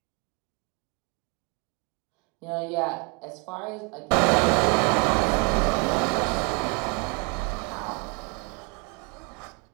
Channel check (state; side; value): quieter; left; 32.5 dB